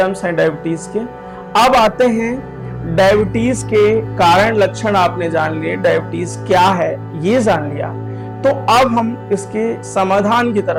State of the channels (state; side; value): identical; both; correlation 1.00